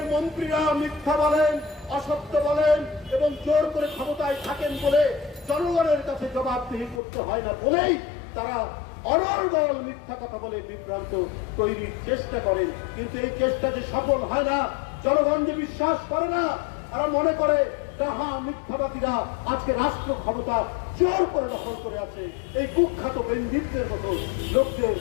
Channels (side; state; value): right; drops out; at 7.0 s